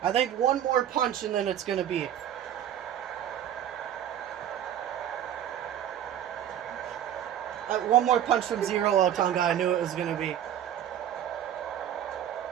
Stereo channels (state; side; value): quieter; left; 10.5 dB